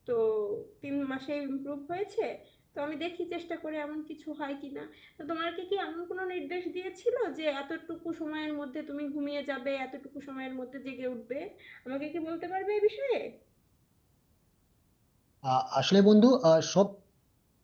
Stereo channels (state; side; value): identical; both; correlation 1.00